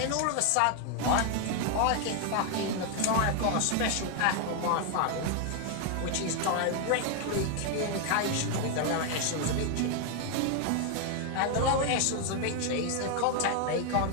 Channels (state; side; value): different; both; correlation 0.00